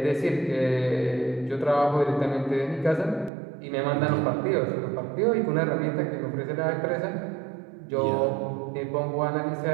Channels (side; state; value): left; drops out; at 3.3 s